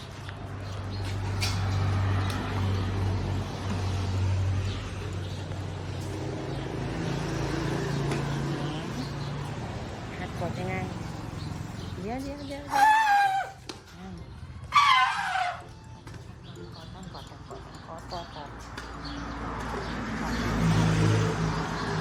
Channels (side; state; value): both; identical; correlation 1.00